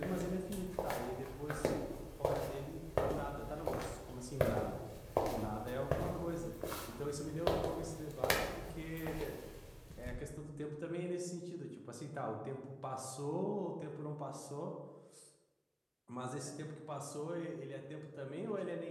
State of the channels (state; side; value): identical; both; correlation 1.00